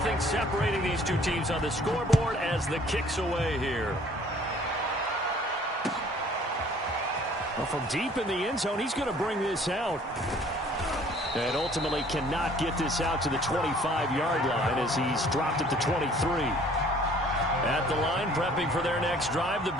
separating these two teams on the scoreboard as the kick's away here. Well, from deep in the end zone, he's going to bring this out. And ultimately cannot get this out to the 25-yard line as he's dropped at the 23. At the line, prepping for their next drive, the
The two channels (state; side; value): normal; both; correlation 0.55